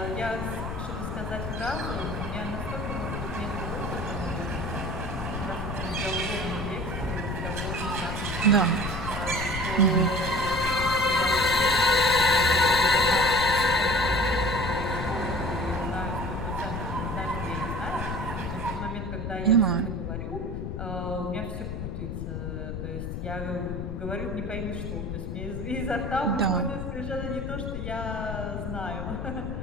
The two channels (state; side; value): noise; left; rumble, 5 dB below the sound